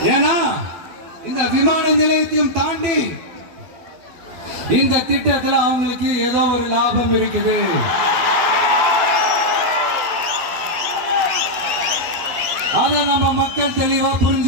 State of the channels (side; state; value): left; late; 12 ms